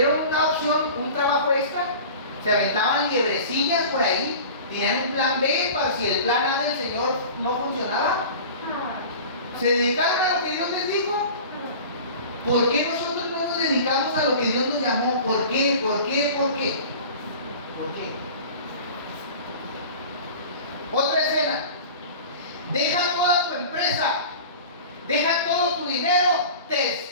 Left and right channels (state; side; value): inverted; both; correlation -0.38